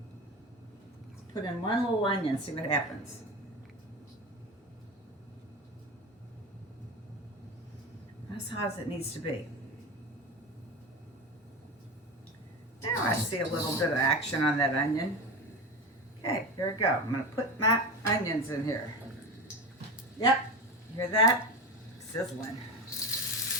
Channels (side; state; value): both; normal; correlation 0.23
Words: put in 1 little onion, see what happens. As hot as it needs to be. Now I see a little bit of action on that onion. Okay, here we go. I'm gonna put my onions in here. Yep, hear that? Sizzling.